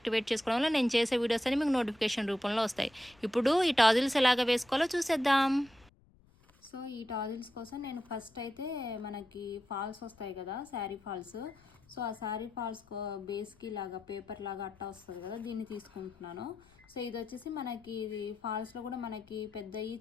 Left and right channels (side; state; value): left; noise; rumble, 29 dB below the sound